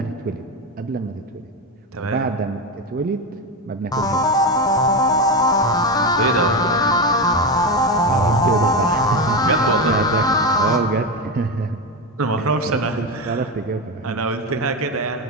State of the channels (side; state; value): both; normal; correlation 0.16